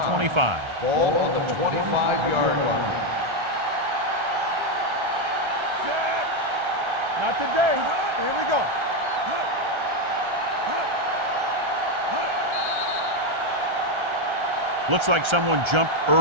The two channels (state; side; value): late; left; 1.3 ms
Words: 25. Ball on the 25-yard line. Not today. Here we go. Looks like someone jumped